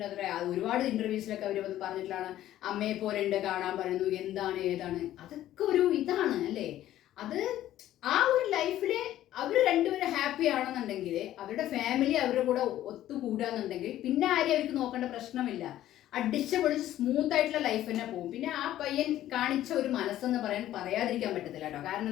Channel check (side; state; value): right; quieter; 13.2 dB